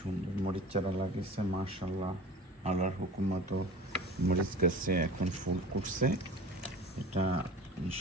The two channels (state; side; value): normal; both; correlation 0.39